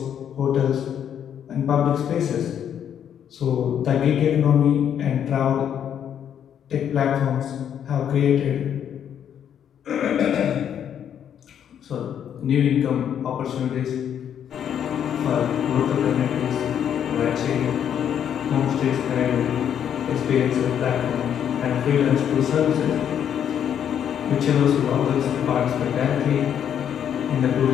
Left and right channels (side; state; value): right; quieter; 9.1 dB